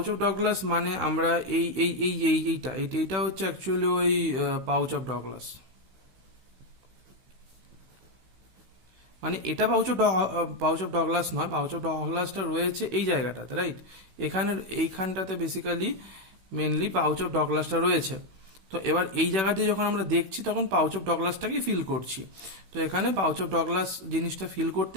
of Douglas মানে আমরা এইটা হচ্ছে অ্যাকচুয়ালি ওই পাউচ অফ ডগলাস, মানে এটা পাউচ অফ ডগলাস নয়, পাউচ অফ ডগলাসটা রয়েছে এই জায়গাটাতে, রাইট? এইখানটাতে বেসিক্যালি মেনলি পাউচ অফ ডগলাসটা রয়েছে। তো এবার এই জায়গা দিয়ে যখন আমরা দেখছি তখন পাউচ অফ ডগলাসটাকেই ফিল করছি। তো এখানে পাউচ অফ ডগলাস জিনিসটা ফিল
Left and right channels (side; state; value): left; late; 16 ms